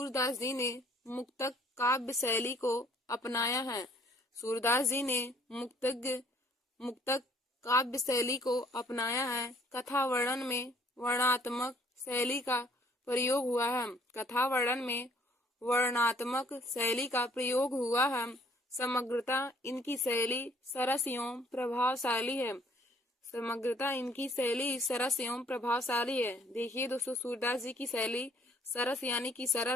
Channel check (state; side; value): normal; both; correlation 0.60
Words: जी ने मुक्तक काव्य शैली को अपनाया है। सूरदास जी ने मुक्तक काव्य शैली को अपनाया है। कथा वर्णन में वर्णात्मक शैली का प्रयोग हुआ है। कथा वर्णन में वर्णात्मक शैली का प्रयोग हुआ है। समग्रता इनकी शैली सरस एवं प्रभावशाली है। समग्रता इनकी शैली सरस एवं प्रभावशाली है। देखिए दोस्तों, सूरदास जी की शैली सरस यानी कि